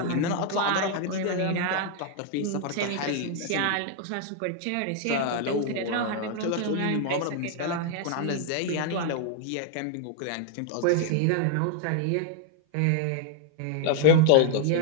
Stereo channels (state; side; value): different; both; correlation 0.00